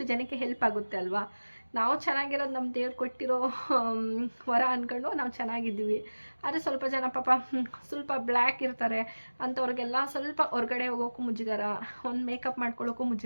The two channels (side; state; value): both; inverted; correlation -1.00